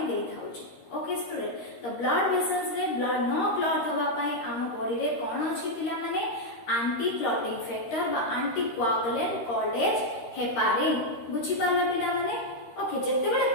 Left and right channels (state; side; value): late; right; 13 ms